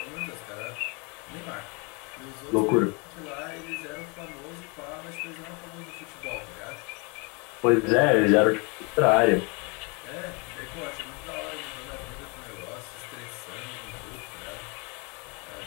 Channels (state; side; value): quieter; right; 30.9 dB